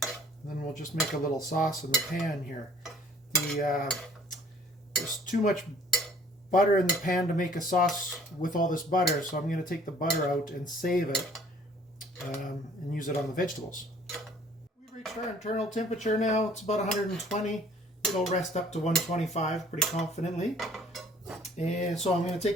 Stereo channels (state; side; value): normal; both; correlation 0.55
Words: we'll just make a little sauce in the pan here. There's too much butter in the pan to make a sauce with all this butter, so I'm going to take the butter out and save it and use it on the vegetables. We've reached our internal temperature now. It's about 120. It'll rest up to 125 pretty confidently. And so I'm going to